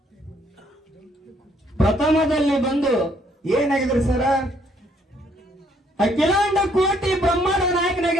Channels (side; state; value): both; normal; correlation 0.67